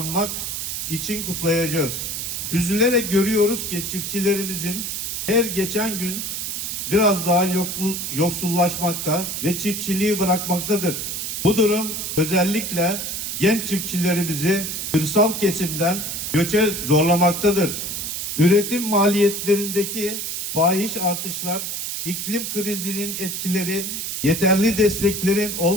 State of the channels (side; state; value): right; noise; hiss, 4 dB below the sound